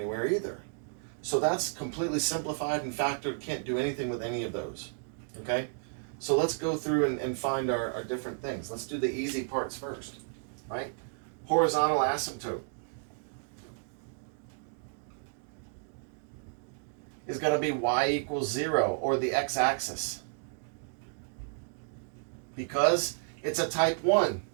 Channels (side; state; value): left; silent; digital silence